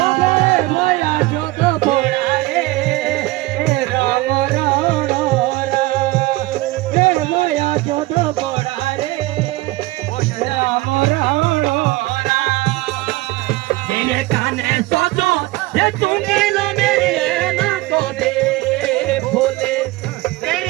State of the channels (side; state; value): left; quieter; 19.5 dB